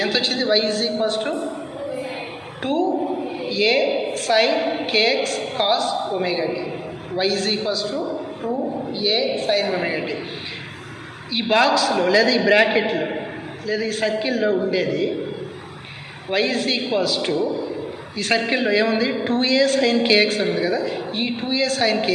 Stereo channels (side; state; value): both; identical; correlation 1.00